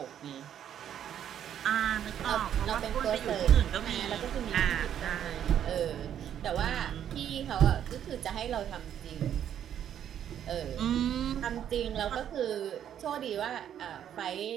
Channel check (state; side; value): quieter; left; 9.9 dB